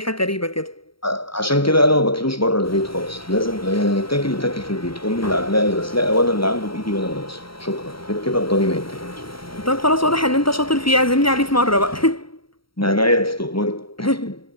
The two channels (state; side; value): late; right; 0.74 ms